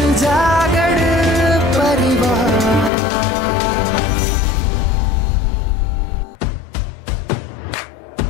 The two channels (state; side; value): drops out; right; at 2.9 s